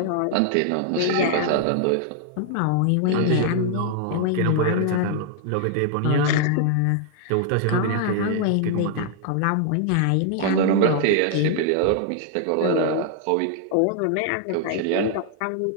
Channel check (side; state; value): both; different; correlation 0.00